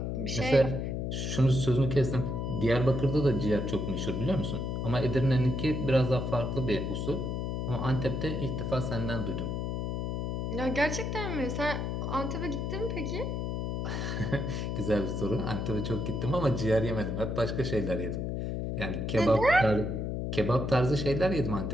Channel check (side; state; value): left; noise; hum, 2 dB below the sound